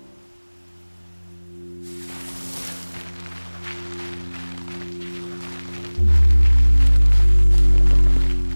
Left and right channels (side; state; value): both; inverted; correlation -1.00